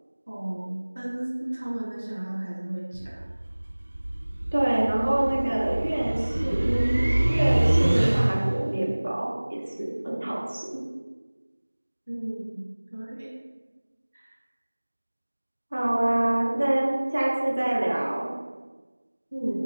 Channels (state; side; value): inverted; both; correlation -1.00